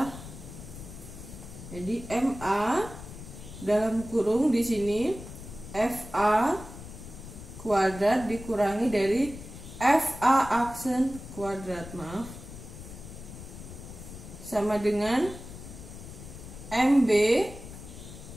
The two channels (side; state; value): left; noise; rumble, 13 dB below the sound